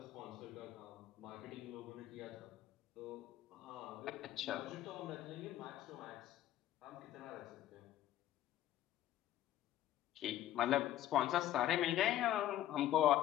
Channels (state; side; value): quieter; right; 12.9 dB